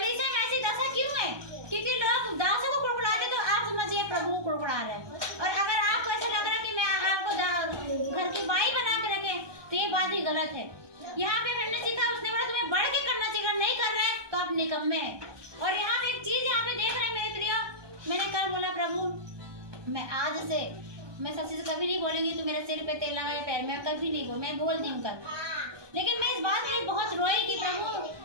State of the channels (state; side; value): late; left; 1.2 ms